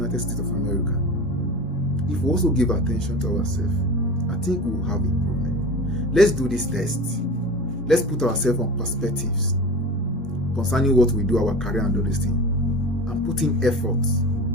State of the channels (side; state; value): both; normal; correlation 0.33